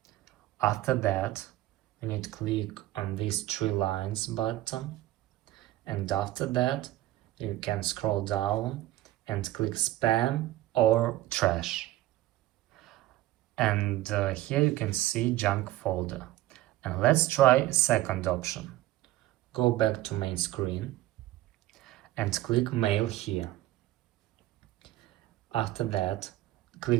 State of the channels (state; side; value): quieter; left; 15.6 dB